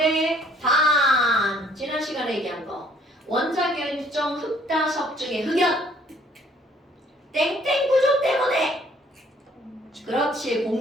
단 지난 시간에 얘기한 거 원자 결정 흑다석 중에 흑연 땡땡 구조 때문에 그렇지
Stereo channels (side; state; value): both; normal; correlation 0.61